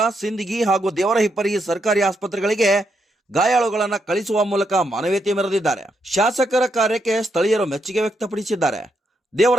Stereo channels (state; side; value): normal; both; correlation 0.80